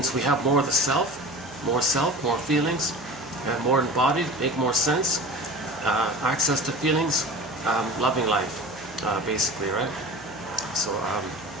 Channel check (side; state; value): right; noise; hum, 23 dB below the sound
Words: we have more of the self, more feelings, more embodied, make more sense, access to feelings, loving life, basically, right?